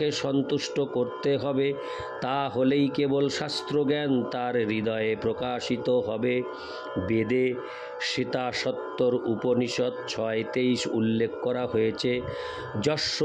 সন্তুষ্ট করতে হবে। তা হলেই কেবল শাস্ত্রজ্ঞান তার হৃদয়ে প্রকাশিত হবে। বেদে সীতাসত্তর উপনিষদ 6:23 উল্লেখ করা হয়েছে, যস্য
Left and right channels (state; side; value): identical; both; correlation 1.00